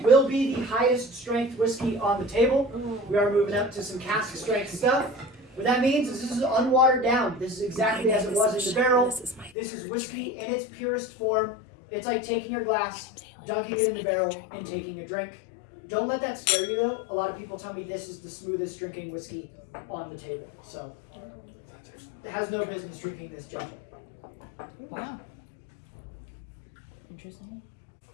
will be the highest strength whiskey on the table. We are moving up to some cask strength stuff. What that means is this is unwatered down. This is exactly as it was in the barrel. This is whiskey in its purest form. It's like taking your glass, dunking it in the barrel, and taking a drink. Don't let that scare you though. A lot of people tell me this is the smoothest drinking whiskey on the table. So, it has no business drinking this gentle. Wow. Interesting.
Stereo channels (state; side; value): drops out; right; at 9.5 s